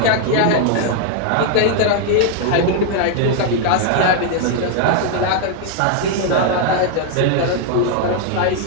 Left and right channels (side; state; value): both; different; correlation 0.00